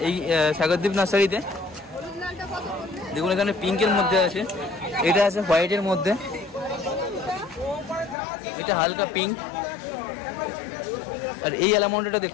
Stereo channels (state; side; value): drops out; right; at 8.2 s